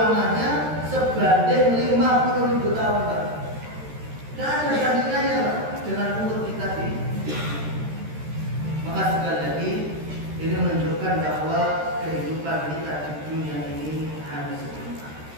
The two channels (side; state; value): left; late; 13 ms